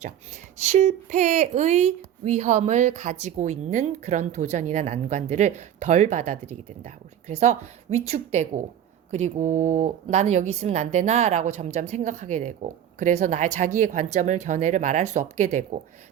실패의 위험을 가지고 있는 그런 도전이나 난관들을 덜 받아들이게 된다. 그래서 위축되고 그리고 나는 여기 있으면 안 되나? 라고 점점 생각하게 되고 그래서 자기의 관점을, 견해를 말할 수 없게 되고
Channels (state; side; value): quieter; left; 10.2 dB